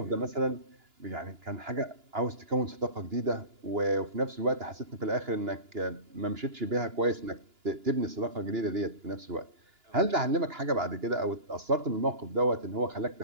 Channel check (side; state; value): left; late; 2.9 ms